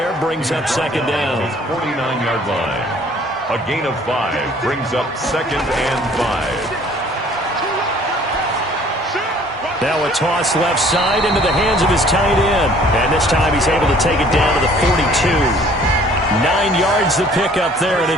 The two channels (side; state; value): both; normal; correlation 0.55